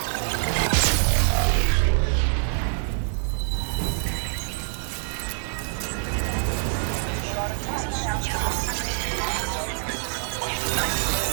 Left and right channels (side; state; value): left; silent; digital silence